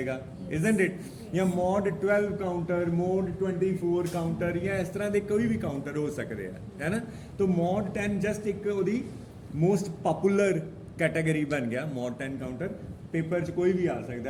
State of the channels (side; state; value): both; identical; correlation 1.00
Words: ਇਜ਼ਨਟ ਇਟ। ਜਾਂ ਮੋਡ 12 ਕਾਊਂਟਰ, ਮੋਡ 24 ਕਾਊਂਟਰ, ਜਾਂ ਇਸ ਤਰ੍ਹਾਂ ਦੇ ਕੋਈ ਵੀ ਕਾਊਂਟਰ ਹੋ ਸਕਦੇ ਆ, ਹੈ ਨਾ। ਤਾਂ ਮੋਡ 10 ਜਸਟ ਇੱਕ ਉਹਦੀ ਮੋਸਟ ਪਪੂਲਰ ਕੈਟਾਗਰੀ ਬਣ ਗਿਆ ਮੋਡ 10 ਕਾਊਂਟਰ। ਪੇਪਰ 'ਚ ਕੋਈ ਵੀ ਆ ਸਕਦਾ